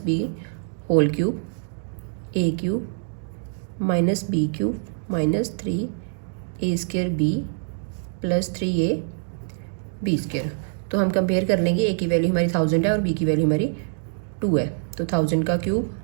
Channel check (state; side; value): silent; left; digital silence